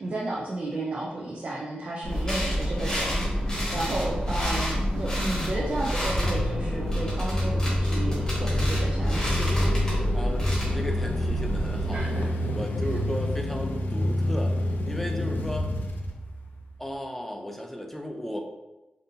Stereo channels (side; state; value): both; normal; correlation 0.89